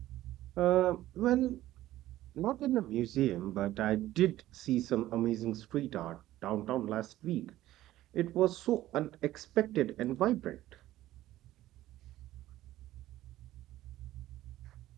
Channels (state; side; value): quieter; left; 14.8 dB